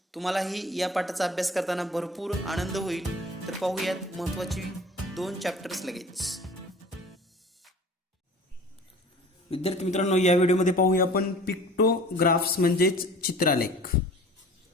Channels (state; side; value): normal; both; correlation 0.44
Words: तुम्हालाही या पाठाचा अभ्यास करताना भरपूर आनंद होईल. तर पाहूयात महत्त्वाची दोन चॅप्टर्स लगेच. विद्यार्थी मित्रांनो, या व्हिडिओमध्ये पाहूया आपण पिक्टोग्राफ्स म्हणजेच चित्रालेख.